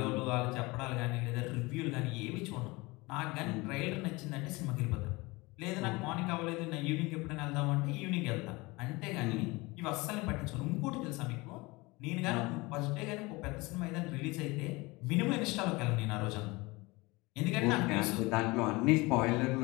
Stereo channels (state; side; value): quieter; right; 23.5 dB